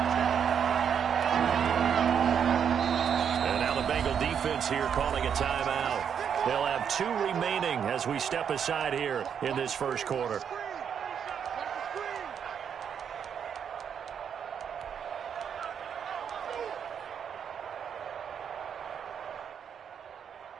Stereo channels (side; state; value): left; quieter; 7.8 dB